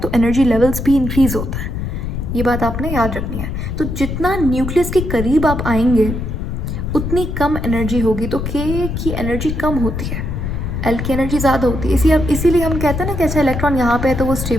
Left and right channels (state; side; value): noise; left; rumble, 4 dB below the sound